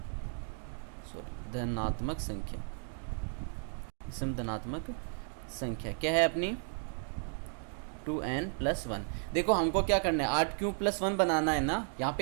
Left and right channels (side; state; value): left; silent; 55 dB below the other